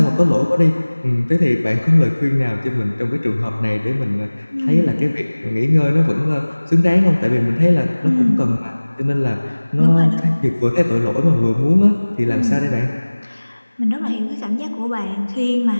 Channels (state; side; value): inverted; both; correlation -1.00